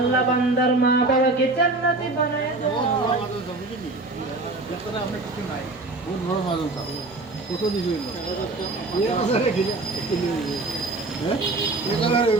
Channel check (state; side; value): quieter; left; 3.2 dB